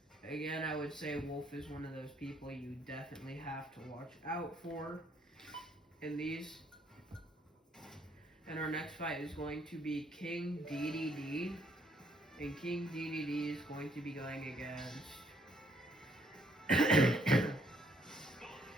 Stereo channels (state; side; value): normal; both; correlation 0.68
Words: Again, I would say Wolf is one of those people you definitely have to watch out for in these. And our next fight is going to be King DDD. And King DDD is going to be going against